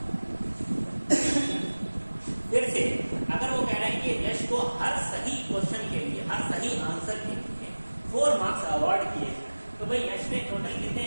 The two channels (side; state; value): both; inverted; correlation -1.00